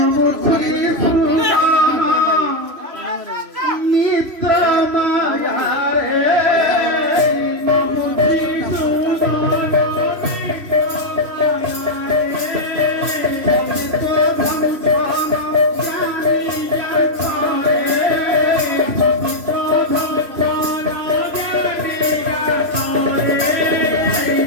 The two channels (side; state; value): left; late; 3.0 ms